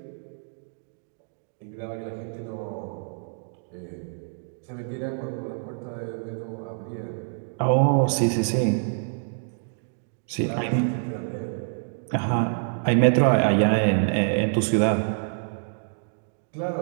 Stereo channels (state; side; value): silent; left; digital silence